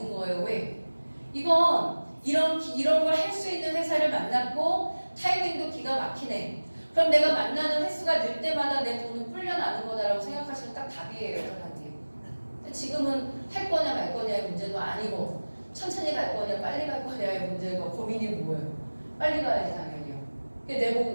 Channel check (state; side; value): inverted; both; correlation -1.00